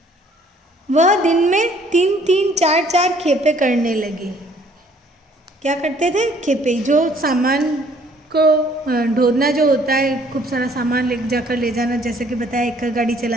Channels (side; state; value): both; normal; correlation 0.60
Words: वह दिन में 3-3 4-4 खेपे करने लगे। क्या करते थे? खेपे, जो सामान को ढोना जो होता है, खूब सारा सामान ले जाकर ले जाना, जैसे कि बताया एक गाड़ी